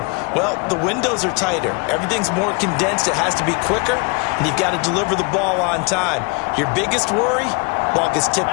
Well, the windows are tighter. Everything's more condensed. It has to be quicker, and you've got to deliver the ball on time. Your biggest worry? Ball gets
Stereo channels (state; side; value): quieter; right; 30.8 dB